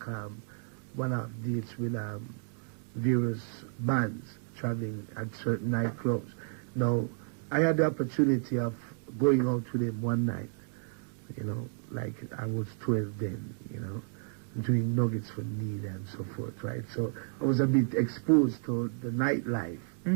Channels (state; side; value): silent; left; 57 dB below the other